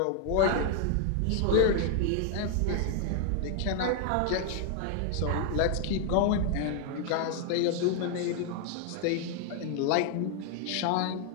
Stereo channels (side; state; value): both; different; correlation 0.00